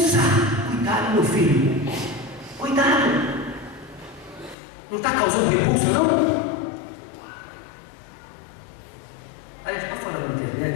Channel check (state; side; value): drops out; right; at 4.5 s